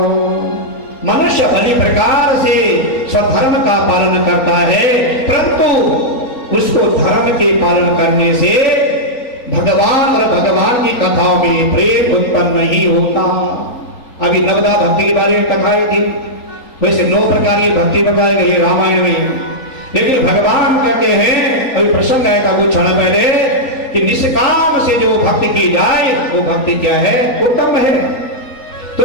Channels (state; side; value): late; right; 3.9 ms